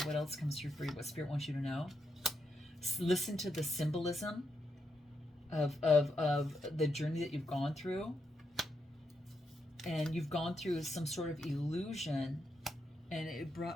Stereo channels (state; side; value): normal; both; correlation 0.82